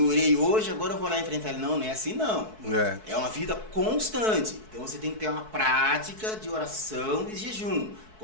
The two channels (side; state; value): left; late; 4.6 ms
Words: orei hoje, agora eu vou lá enfrentar ele. Não, não é assim não. É uma vida constante. Então você tem que ter uma prática de oração e jejum